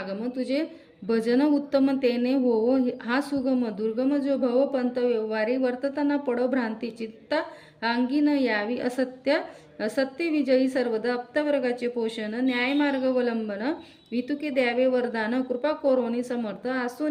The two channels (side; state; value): both; identical; correlation 1.00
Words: तुझे भजन उत्तम तेने होवो. हा सुगम दुर्गम जो भव पंत व्यवहारी. वर्तताना पडो भ्रांती चित्ता अंगी न यावी. सत्य विजयी सर्वदा. अप्तवर्गाचे पोषण न्यायमार्गवलंबन. वितुके द्यावे वरदान. कृपा कोरोनी समर्थ